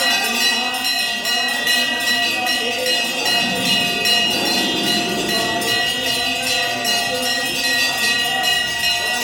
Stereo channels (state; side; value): identical; both; correlation 1.00